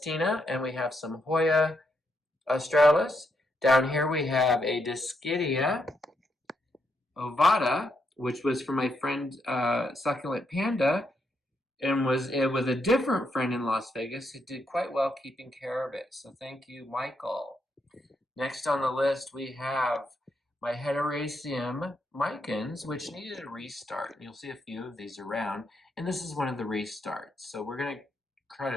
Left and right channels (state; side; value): normal; both; correlation 0.79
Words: and we have some Hoya australis. Down here we have a Dischidia ovata, which was from my friend Succulent Panda, and was with a different friend in Las Vegas who did quite well keeping care of it. So thank you, Michael. Next on the list we have my Hederaceum micans, which needed a restart. You'll see a few of these around, and this is one of the restarts. So we're going to try